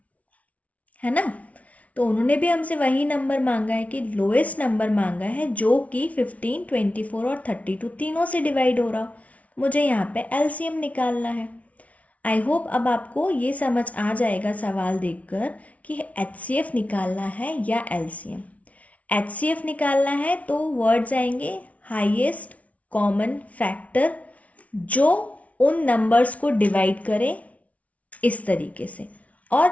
है ना। तो उन्होंने भी हमसे वही नंबर मांगा है कि लोएस्ट नंबर मांगा है जो कि 15, 24 और 32 तीनों से डिवाइड हो रहा हो। मुझे यहाँ पे एलसीएम निकालना है। आई होप अब आपको ये समझ आ जाएगा सवाल देखकर कि एचसीएफ निकालना है या एलसीएम। एचसीएफ निकालना है तो वर्ड्स आएंगे हाईएस्ट कॉमन फैक्टर जो उन नंबर्स को डिवाइड करे इस तरीके से,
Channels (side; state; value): right; late; 0.067 ms